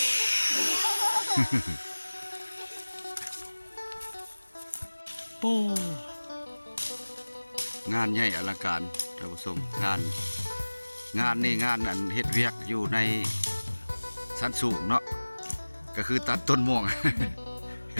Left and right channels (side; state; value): both; inverted; correlation -1.00